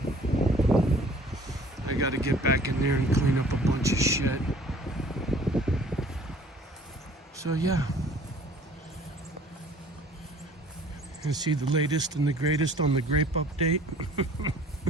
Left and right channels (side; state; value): both; normal; correlation 0.52